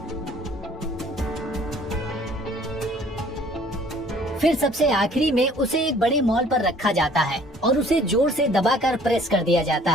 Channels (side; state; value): both; normal; correlation 0.55